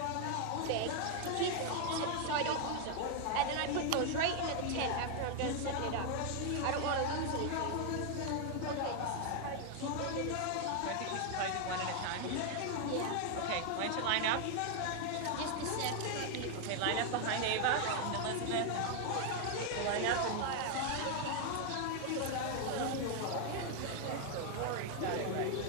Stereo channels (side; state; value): both; different; correlation 0.01